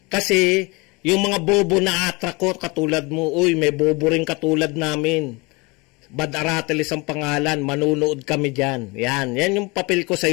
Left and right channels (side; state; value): right; quieter; 26.5 dB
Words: Kasi, yung mga bobo na attract ko, katulad mo, uy, may bobo rin katulad namin. Bad Aratilis ang pangalan, manunood kami dyan. Yan yung papel ko